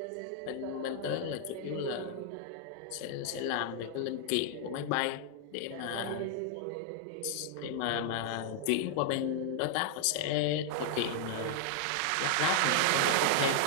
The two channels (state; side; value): different; both; correlation 0.00